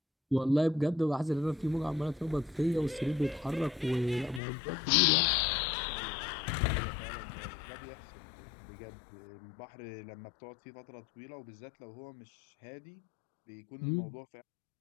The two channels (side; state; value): right; drops out; at 4.4 s